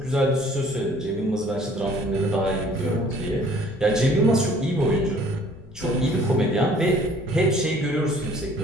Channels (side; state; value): left; noise; rumble, 21 dB below the sound